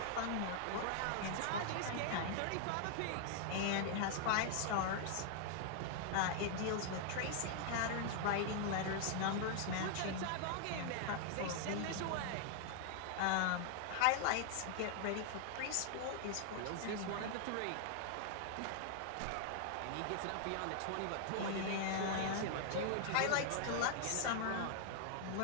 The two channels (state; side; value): different; both; correlation 0.00